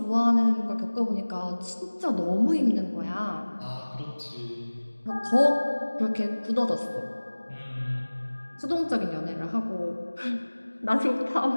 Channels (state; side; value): inverted; both; correlation -1.00